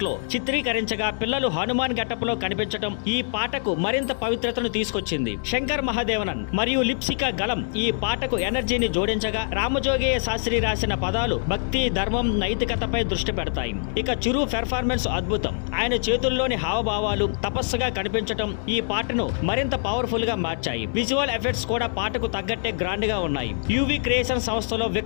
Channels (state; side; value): silent; right; digital silence